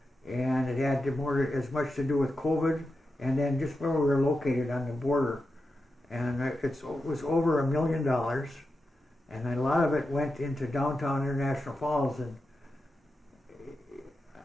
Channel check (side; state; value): both; normal; correlation 0.89